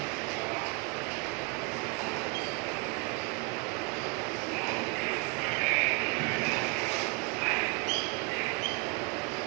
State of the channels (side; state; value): left; quieter; 29.3 dB